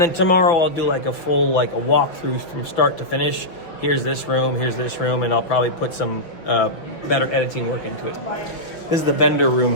tomorrow I'll do like a full a walkthrough from start to finish. Here's this room, and I'll probably put some better editing work into it. This is the vendor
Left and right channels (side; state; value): right; late; 5.9 ms